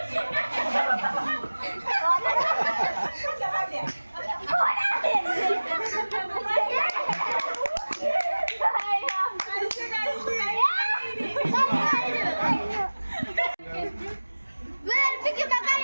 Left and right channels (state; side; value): inverted; both; correlation -1.00